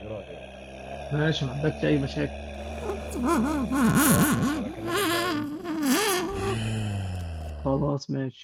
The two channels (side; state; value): both; identical; correlation 1.00